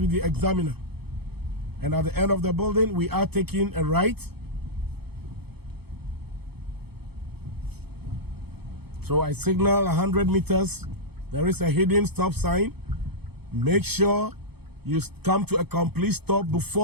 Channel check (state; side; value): late; left; 0.97 ms